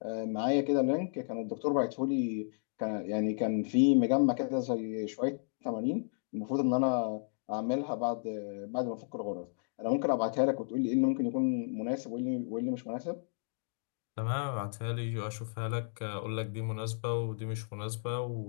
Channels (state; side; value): silent; right; digital silence